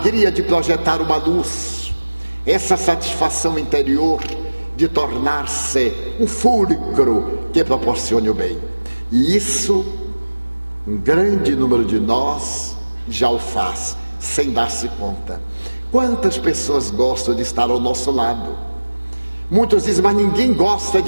de projetar uma luz, essa satisfação interior de tornar-se um fulcro que proporcione o bem. E isso, um grande número de nós já o faz, sem dar-se conta. Quantas pessoas gostam de estar ao nosso lado? Muitos dizem, mas ninguém gosta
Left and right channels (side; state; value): both; inverted; correlation -1.00